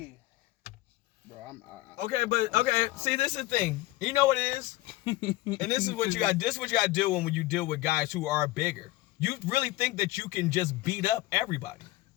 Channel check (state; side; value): quieter; right; 18.3 dB